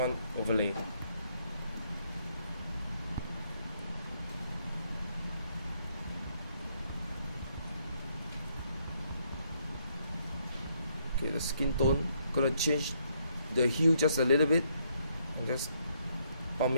overlay. Okay, the skin tone, gonna change the hue just a little bit and just pump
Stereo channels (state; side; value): inverted; both; correlation -0.72